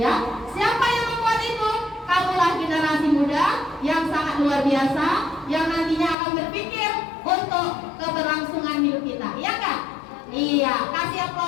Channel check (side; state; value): right; drops out; at 6.2 s